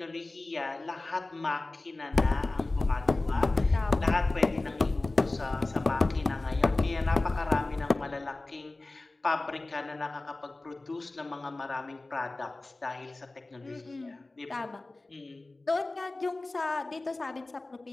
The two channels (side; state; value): right; quieter; 3.0 dB